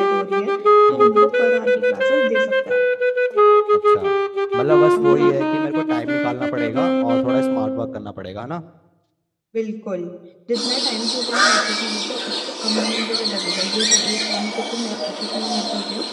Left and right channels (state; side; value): identical; both; correlation 1.00